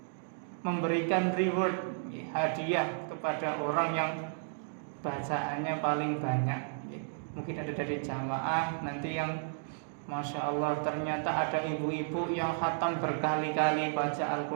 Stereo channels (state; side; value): silent; left; digital silence